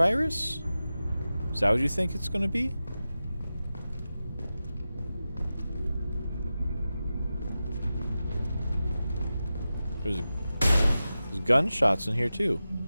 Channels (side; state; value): both; inverted; correlation -0.94